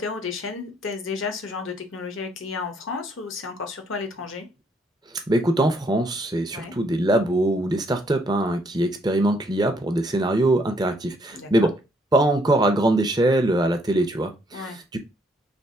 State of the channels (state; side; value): normal; both; correlation 0.69